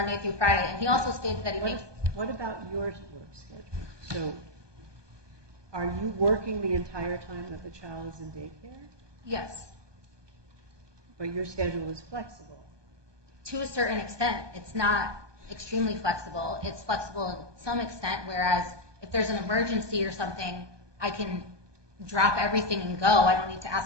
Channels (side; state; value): left; late; 1.2 ms